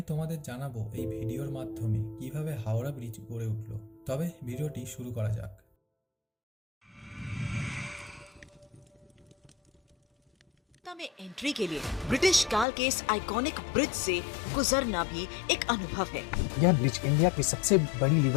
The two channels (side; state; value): right; drops out; at 12.7 s